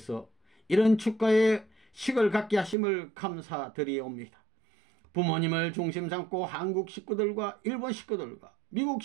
이런 축가의 식을 갖게 하심을 감사드리옵니다. 부모님을 중심 삼고 한국 식구들과 일본 식구들과 미국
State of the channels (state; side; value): drops out; left; at 2.8 s